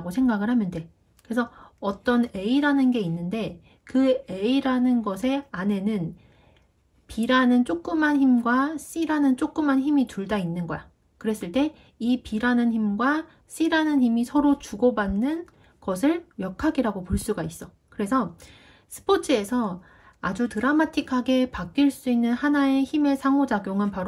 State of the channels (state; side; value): identical; both; correlation 1.00